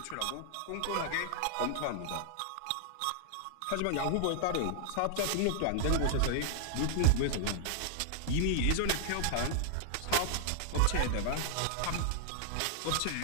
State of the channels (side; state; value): both; different; correlation 0.00